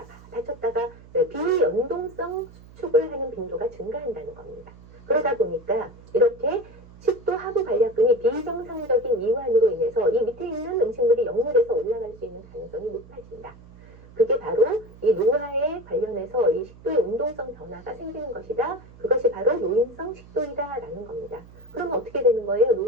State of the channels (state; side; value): noise; right; hum, 21 dB below the sound